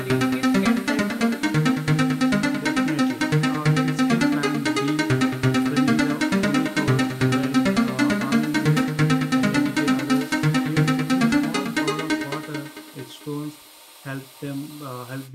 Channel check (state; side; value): identical; both; correlation 1.00